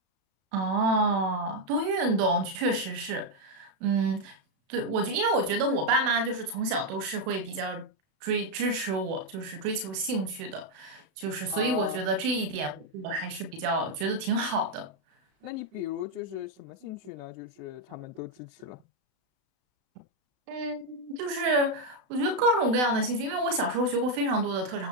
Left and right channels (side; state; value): left; late; 32 ms